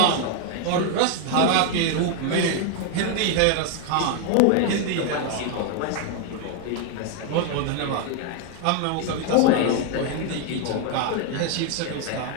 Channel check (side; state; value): both; different; correlation 0.00